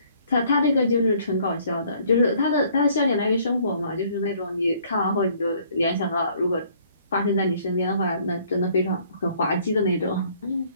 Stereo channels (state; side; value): inverted; both; correlation -0.61